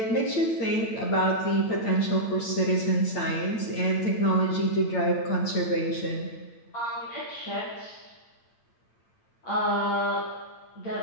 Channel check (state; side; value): late; right; 8.9 ms